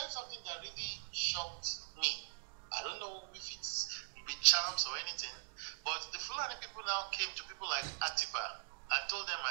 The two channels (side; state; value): left; silent; digital silence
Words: something that really shocked me. I don't know if it's with charms or anything, but the Fulani people now came to people like Atiba and told them